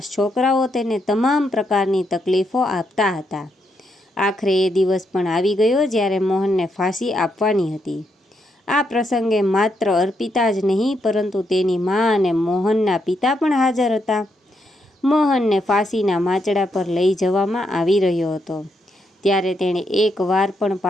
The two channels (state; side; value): normal; both; correlation 0.79